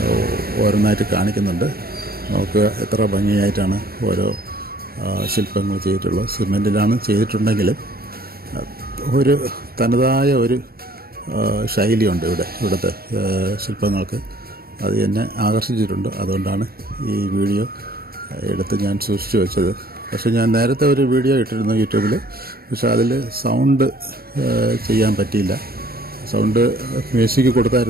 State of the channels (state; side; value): late; left; 0.44 ms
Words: ഓരോന്നായിട്ട് കാണിക്കുന്നുണ്ട്. നമുക്ക് എത്ര ഭംഗിയായിട്ടാണ് ഓരോ ശില്പങ്ങൾ ചെയ്തിട്ടുള്ളത്. സിമെൻറ്റിലാണ് ചെയ്തിട്ടുണ്ടെങ്കിലും ഒരു തനതായ ഒരു ശൈലിയുണ്ട് ഇവിടുത്തെ ശില്പങ്ങൾക്ക്. അത് എന്നെ ആകർഷിച്ചിട്ടുണ്ട്. അതുകൊണ്ടാണ് ഈ വീഡിയോ എടുത്ത് ഞാൻ സൂക്ഷിച്ചു വെച്ചത്. പക്ഷേ ഞാൻ നേരത്തെ ഒരു വീഡിയോ ഇട്ടിരുന്നു യൂട്യൂബിൽ. പക്ഷേ അതിൽ സൗണ്ട് ചെയ്യാൻ പറ്റിയില്ല. സൗണ്ട് മ്യൂസിക്